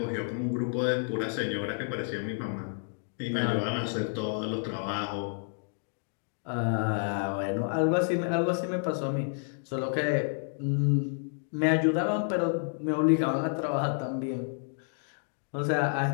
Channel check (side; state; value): right; silent; digital silence